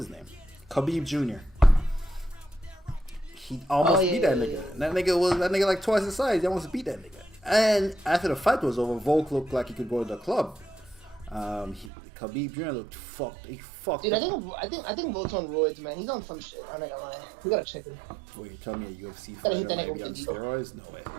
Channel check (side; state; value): left; drops out; at 11.9 s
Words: name? Khabib Jr. He almost beat that nigga. And that nigga like twice his size. He almost beat that nigga. And after the fight was over, Volk looked like he could go to the club. Khabib Jr. looked fucked. He fucked. Dude, I think Volt's on roids, man. He's on some shit. I'm not gonna lie. We gotta check him. Wait, you tell me a UFC fighter might be on steroids? No way.